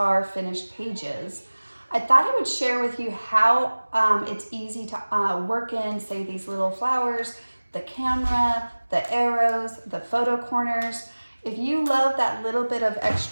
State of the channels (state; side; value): inverted; both; correlation -1.00